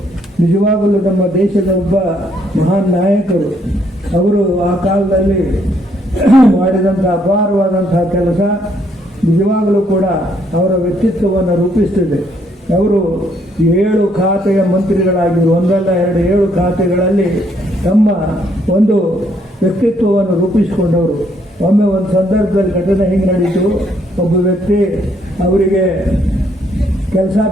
ನಿಜವಾಗಲೂ ನಮ್ಮ ದೇಶದ ಒಬ್ಬ ಮಹಾನ್ ನಾಯಕರು. ಅವರು ಆ ಕಾಲದಲ್ಲಿ ಮಾಡಿದಂಥ ಅಪಾರವಾದಂತಹ ಕೆಲಸ ನಿಜವಾಗಲೂ ಕೂಡ ಅವರ ವ್ಯಕ್ತಿತ್ವವನ್ನು ರೂಪಿಸ್ತಿದೆ. ಅವರು 7 ಖಾತೆಯ ಮಂತ್ರಿಗಳಾಗಿದ್ದರು. ಒಂದಲ್ಲ 7 ಖಾತೆಗಳಲ್ಲಿ ತಮ್ಮ ಒಂದು ವ್ಯಕ್ತಿತ್ವವನ್ನು ರೂಪಿಸಿಕೊಂಡವರು. ಒಮ್ಮೆ ಒಂದು ಸಂದರ್ಭದಲ್ಲಿ ಘಟನೆ ಹಿಂಗೆ ನಡೀತು. ಒಬ್ಬ ವ್ಯಕ್ತಿ ಅವರಿಗೆ ಕೆಲಸ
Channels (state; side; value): normal; both; correlation 0.70